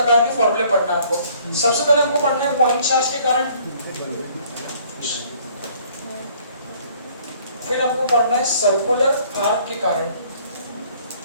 के फॉर्मूले पढ़ना है आपको सबसे पहले हमको पढ़ना है पॉइंट चार्ज के कारण फिर हमको पढ़ना है सर्कुलर आर्क के कारण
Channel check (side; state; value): both; inverted; correlation -0.59